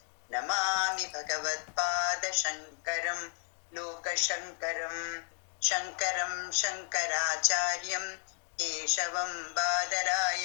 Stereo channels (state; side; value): silent; right; 56 dB below the other